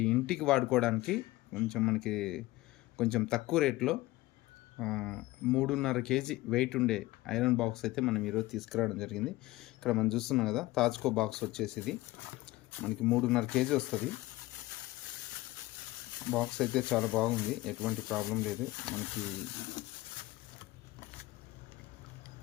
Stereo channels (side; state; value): right; quieter; 18.7 dB